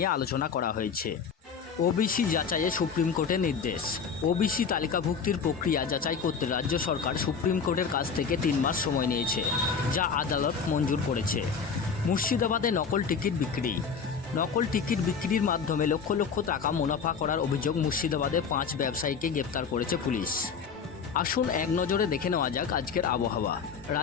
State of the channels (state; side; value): quieter; right; 6.1 dB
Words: আলোচনা করা হয়েছে। ওবিসি যাচাইয়ে সুপ্রিম কোর্টের নির্দেশ। ওবিসি তালিকাভুক্তির প্রক্রিয়া যাচাই করতে রাজ্য সরকার সুপ্রিম কোর্টের কাছ থেকে 3 মাস সময় নিয়েছে, যা আদালত মঞ্জুর করেছে। মুর্শিদাবাদে নকল টিকিট বিক্রি। নকল টিকিট বিক্রির মাধ্যমে লক্ষ লক্ষ টাকা মুনাফা করার অভিযোগ মুর্শিদাবাদে 5 ব্যবসায়ীকে গ্রেপ্তার করেছে পুলিশ। আসুন এক নজরে দেখে নেওয়া যাক আজকের আবহাওয়া।